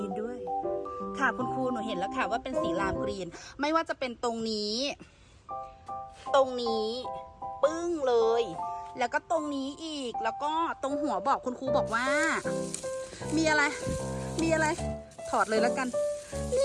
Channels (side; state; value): both; identical; correlation 1.00